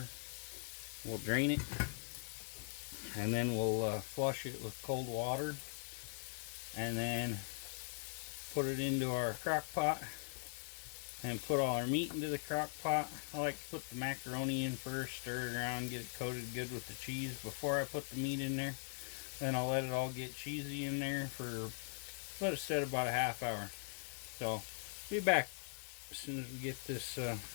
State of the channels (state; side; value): silent; right; 50 dB below the other